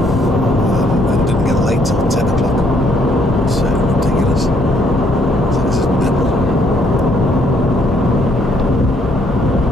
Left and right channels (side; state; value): both; normal; correlation 0.68